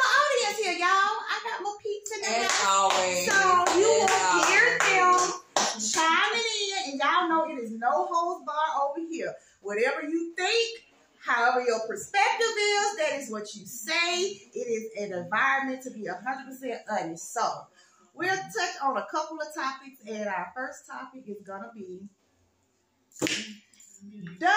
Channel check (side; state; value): both; identical; correlation 1.00